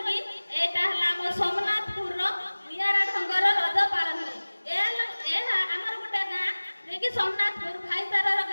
ଏଇଟା ହେଲା ଆମ ସୋମନାଥପୁରର ନିଆରା ଢଙ୍ଗର ରଜ ପାଳନ ହୁଏ। ଏହା ଆମର ଗୋଟେ ଗାଁ, ଯିଏକି ସୋମନାଥପୁର ଭାଇଚାରାର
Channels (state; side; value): inverted; both; correlation -1.00